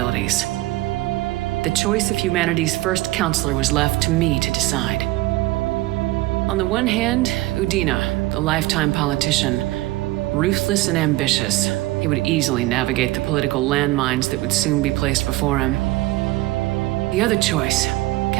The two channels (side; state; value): left; quieter; 18.3 dB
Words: The choice of humanity's first counselor was left to me to decide. On the one hand, Udina, the lifetime politician, ruthless and ambitious, he would easily navigate the political landmines that would soon be placed before him. The other choice,